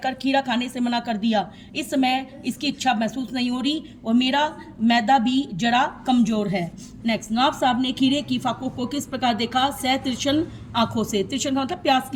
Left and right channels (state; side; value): identical; both; correlation 1.00